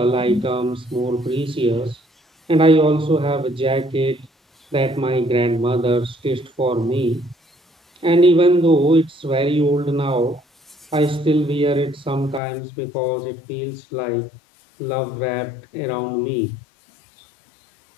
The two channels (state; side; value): drops out; right; at 12.4 s